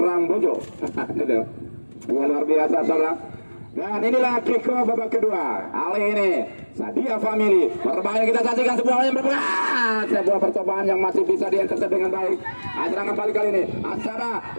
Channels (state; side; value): inverted; both; correlation -1.00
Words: Bojo. Ya, luar biasa saudara. Dan inilah kick-off babak kedua. Kali ini Sedia Family berbahaya, kita saksikan sebuah percobaan yang masih bisa diintercept dengan baik. Serangan balik kali ini Asara